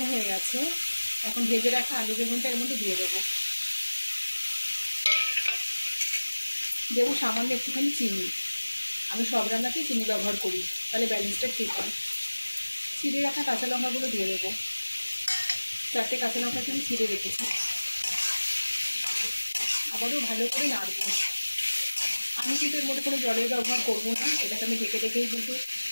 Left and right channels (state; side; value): inverted; both; correlation -1.00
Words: হয়ে গেছে, এখন ভেজে রাখা আলু বেগুনটা এর মধ্যে দিয়ে দেবো। দেবো সামান্য একটুখানি চিনি। আমি সব রান্নাতেই চিনি ব্যবহার করি, তাহলে ব্যালেন্সটা ঠিক হয়। চিড়ে রাখা কাঁচা লঙ্কাগুলো দিয়ে দেবো। 4টে কাঁচা লঙ্কাকে আমি চিড়ে রেখেছি। আবারও ভালো করে নাড়বো। আমি কিন্তু এর মধ্যে কোনো জলের ব্যবহার করবো না, এটাকে আমি ঢেকে ঢেকেই, কিন্তু